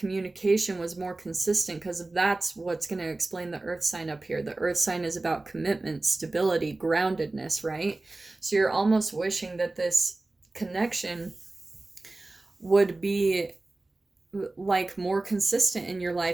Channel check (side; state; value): left; quieter; 3.1 dB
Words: was more consistent, because that's what's going to explain the earth sign up here. The earth sign is about commitment, stability, groundedness, right? So you're almost wishing that this connection would be like more consistent in your